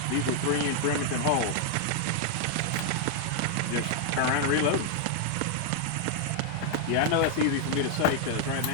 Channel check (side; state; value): both; different; correlation 0.00